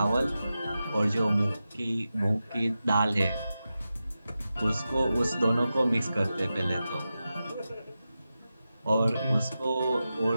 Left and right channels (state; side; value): inverted; both; correlation -0.92